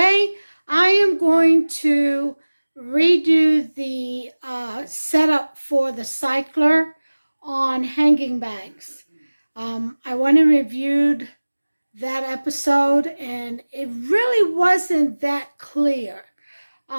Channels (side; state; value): both; inverted; correlation -1.00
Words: I am going to redo the setup for the cycler on hanging bags. I went and reviewed that episode, and it really wasn't that clear